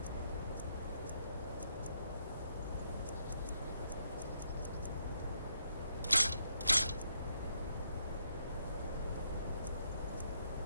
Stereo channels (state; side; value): inverted; both; correlation -0.77